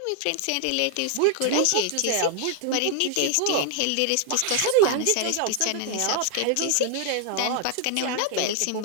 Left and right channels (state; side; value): different; both; correlation 0.00